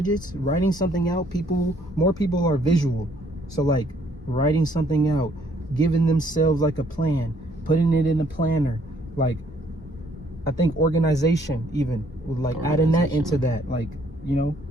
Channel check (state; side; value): normal; both; correlation 0.65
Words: writing something out. More people are visual, so like writing something out, giving themselves like a plan, putting it in a planner. Like I think organization even with like adding that into that, like, you know,